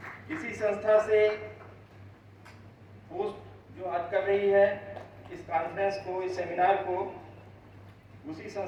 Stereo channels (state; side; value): identical; both; correlation 1.00